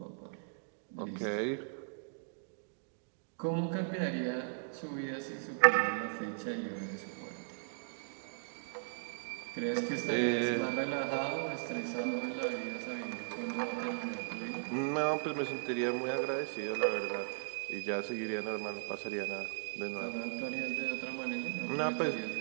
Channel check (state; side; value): silent; left; digital silence